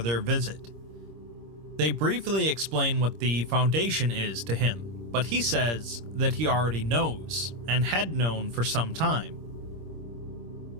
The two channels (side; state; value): left; late; 26 ms